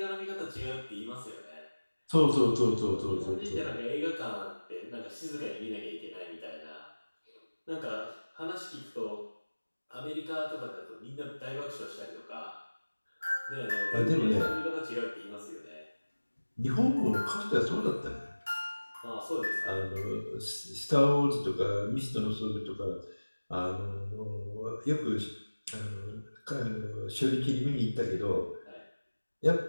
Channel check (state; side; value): inverted; both; correlation -1.00